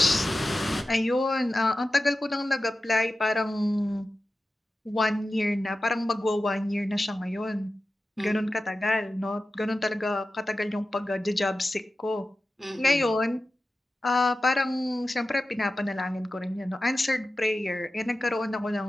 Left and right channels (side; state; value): both; normal; correlation 0.94